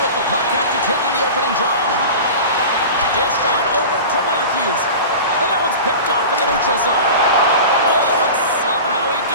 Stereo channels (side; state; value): both; inverted; correlation -0.33